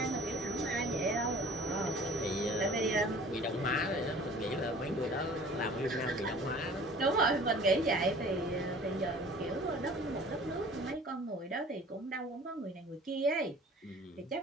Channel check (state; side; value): normal; both; correlation 0.47